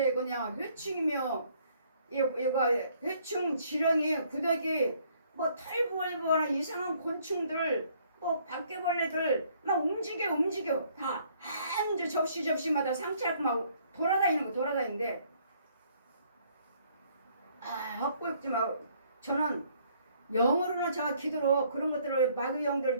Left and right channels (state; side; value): inverted; both; correlation -0.64